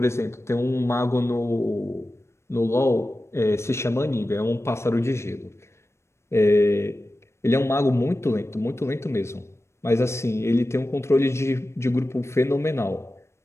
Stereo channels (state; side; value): late; right; 0.13 ms